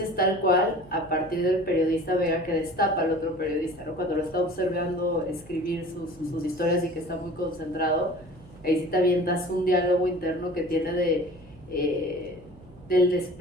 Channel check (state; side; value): noise; right; hum, 22 dB below the sound